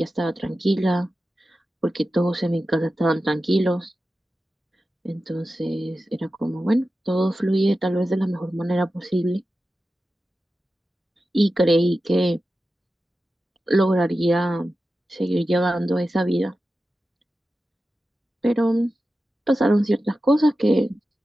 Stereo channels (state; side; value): normal; both; correlation 0.93